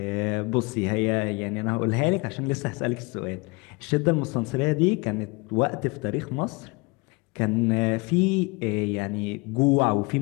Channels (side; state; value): right; quieter; 27.2 dB